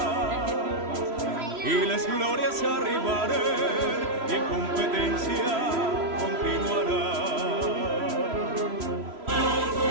i les glòries arribaren i en competència continuarà.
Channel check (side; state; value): left; late; 3.0 ms